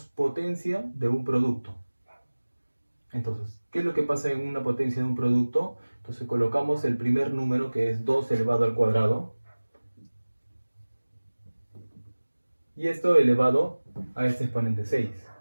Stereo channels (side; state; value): both; inverted; correlation -1.00